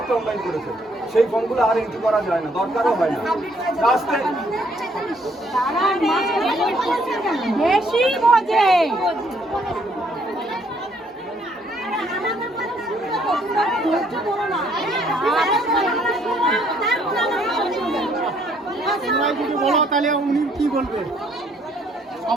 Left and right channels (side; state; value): both; normal; correlation 0.66